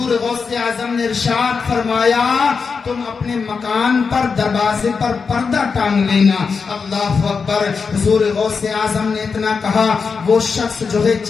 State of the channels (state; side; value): quieter; right; 5.3 dB